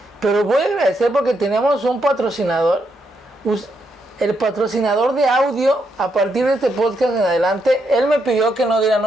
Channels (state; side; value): normal; both; correlation 0.79